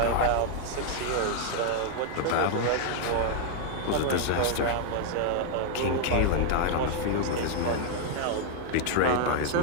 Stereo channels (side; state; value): both; different; correlation 0.00